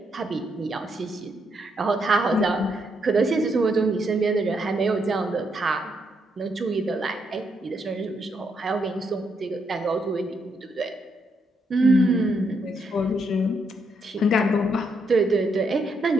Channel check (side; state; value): both; normal; correlation 0.77